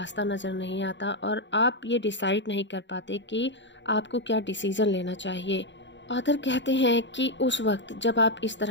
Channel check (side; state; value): right; late; 0.53 ms